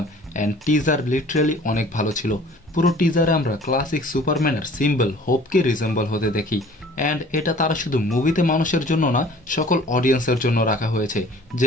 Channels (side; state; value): both; normal; correlation 0.50